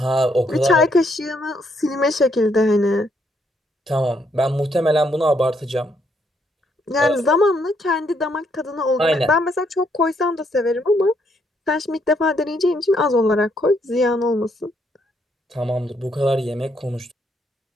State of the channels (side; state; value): both; normal; correlation 0.73